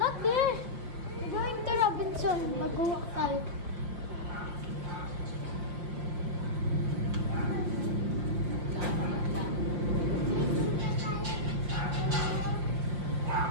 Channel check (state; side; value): late; left; 5.6 ms